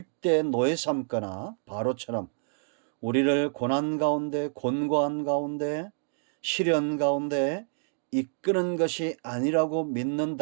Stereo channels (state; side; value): silent; left; digital silence